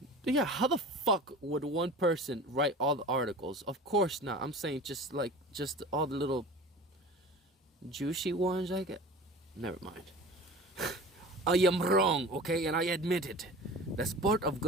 yeah, how the fuck would one person write all the articles? Of course not. I'm saying just all the little juicy ones I get. Never mind. I am wrong, okay, and I admit it. That's part of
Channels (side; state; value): both; normal; correlation 0.38